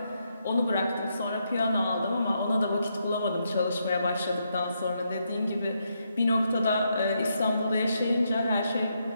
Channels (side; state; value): both; inverted; correlation -0.80